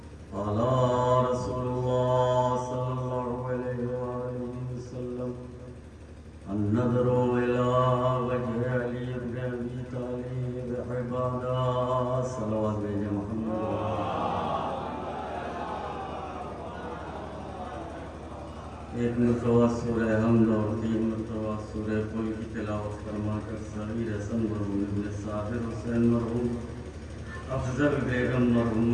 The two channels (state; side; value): identical; both; correlation 1.00